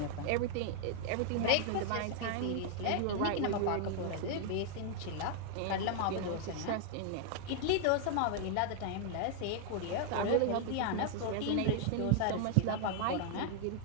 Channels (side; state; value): both; different; correlation 0.00